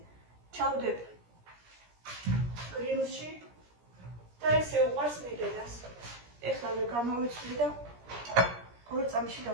ჩავდებ გრილში და ესე უყარს მიდედას. ეხლა გამოვიცვლი და 2 წამში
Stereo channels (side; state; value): left; late; 17 ms